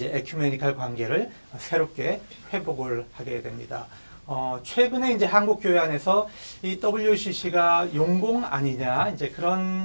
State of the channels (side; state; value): both; inverted; correlation -1.00